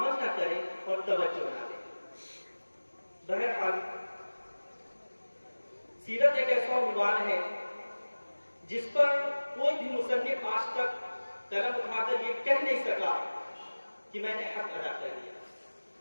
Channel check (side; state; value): both; inverted; correlation -1.00